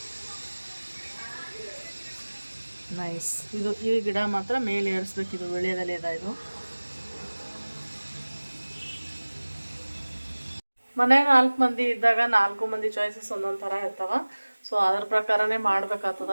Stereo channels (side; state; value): both; inverted; correlation -1.00